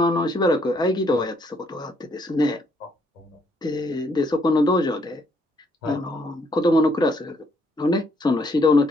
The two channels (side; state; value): both; normal; correlation 0.70